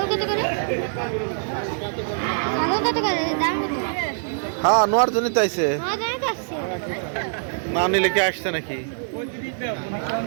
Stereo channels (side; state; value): left; silent; 63 dB below the other